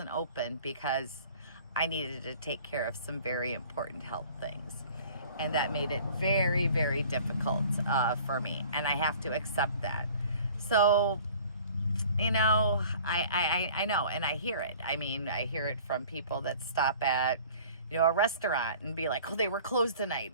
open because I needed to take care of some very important health things. And that made it very, very difficult for me. And I have to accept that. So, you know, I know, and I hear it. I mean, I hear it from people that stop at, you know, a restaurant and be like, oh, they were closed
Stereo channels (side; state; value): both; inverted; correlation -0.48